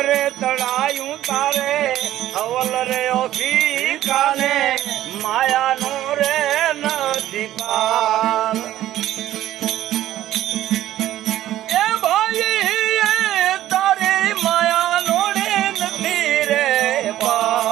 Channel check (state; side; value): quieter; left; 13.5 dB